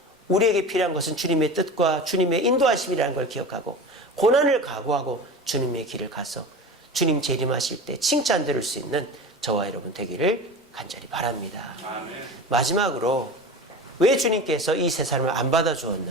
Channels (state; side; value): normal; both; correlation 0.32